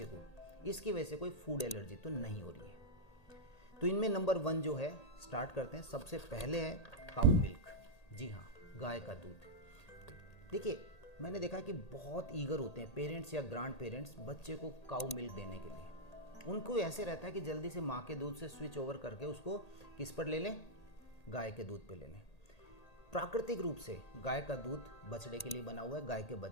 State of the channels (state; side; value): late; right; 1.8 ms